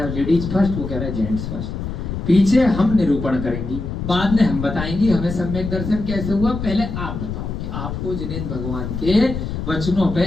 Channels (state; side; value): noise; left; rumble, 5 dB below the sound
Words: लेडीज फर्स्ट, वो कह रहा है जेंट्स फर्स्ट। पीछे हम निरूपण करेंगी, बाद में हम बताएंगे हमें सम्यक दर्शन कैसे हुआ। पहले आप बताओ कि आपको जिनेंद्र भगवान के वचनों